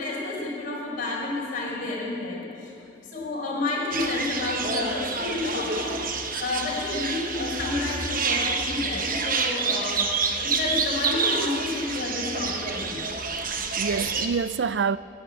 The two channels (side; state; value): both; normal; correlation 0.05